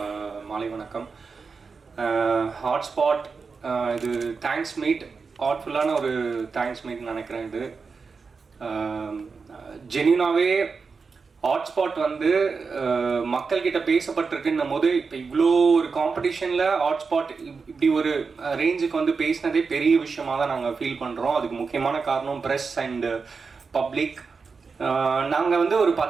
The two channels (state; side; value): quieter; left; 4.9 dB